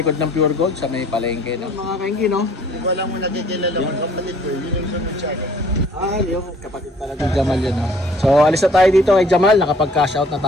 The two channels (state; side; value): normal; both; correlation 0.56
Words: ng Pure Gold, sa may palengke, no? Mga kaingi, no? Kung wala mo nagkikilala ko, kapatid ko, yun yung sumunod. Yung kapatid pala ng Jamal yun, no? So alis na tayo dito kay Jamal, nakapag-cash out na